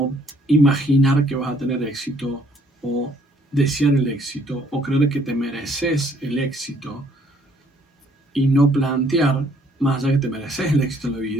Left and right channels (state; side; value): normal; both; correlation 0.63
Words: imaginar que vas a tener éxito, o desear el éxito, o creer que te mereces el éxito, y no plantear, más allá que te mereces el éxito en la